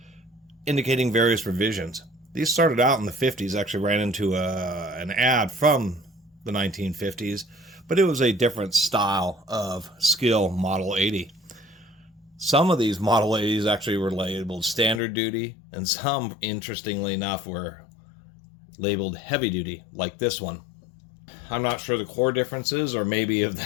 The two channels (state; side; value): drops out; right; at 15.0 s